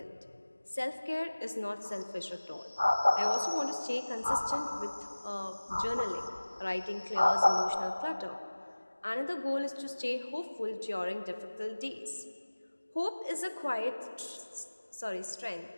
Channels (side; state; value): both; inverted; correlation -1.00